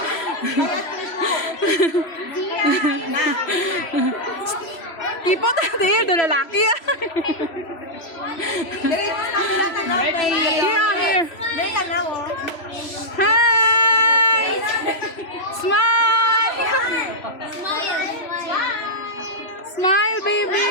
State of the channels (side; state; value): right; late; 3.0 ms